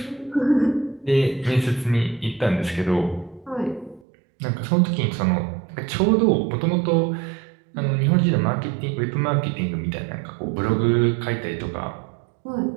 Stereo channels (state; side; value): drops out; left; at 4.0 s